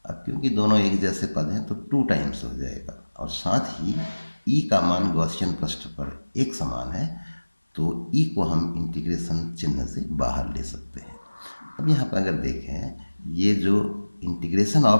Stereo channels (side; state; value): both; inverted; correlation -1.00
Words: अब क्योंकि दोनों एक जैसे पद हैं तो 2 टाइम्स हो जाएगा, और साथ ही ई का मान गॉसियन पृष्ठ पर एक समान है, तो ई को हम इंटीग्रेशन चिन्ह से बाहर ले सकते हैं। अब यहाँ पर अगर देखें, ये जो इंटीग्रेशन